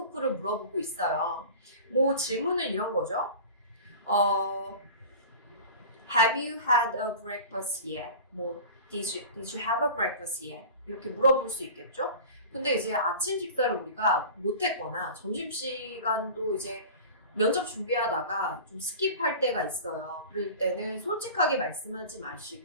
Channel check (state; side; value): inverted; both; correlation -0.37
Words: 물어보고 있어요. 뭐 질문은 이런 거죠. Have you had a breakfast yet? 뭐 Did you have a breakfast yet? 이렇게 물어볼 수 있겠죠? 근데 이제 아침 식사를 우리가 못했거나 점심시간도 이제 면접 준비하다가 좀 스킵할 때가 있어요. 그럴 때는 솔직하게 말씀하지